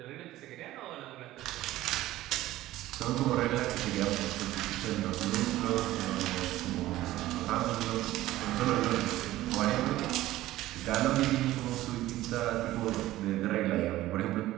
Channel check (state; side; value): quieter; left; 15.7 dB